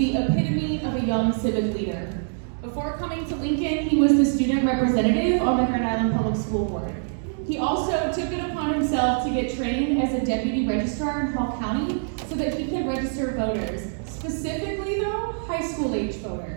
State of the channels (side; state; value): left; silent; digital silence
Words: epitome of a young civic leader. Before coming to Lincoln, he was the student representative on the Grand Island Public School Board. He also took it upon himself to get trained as a deputy registrar in Hall County so that he could register voters. Specifically though, high school age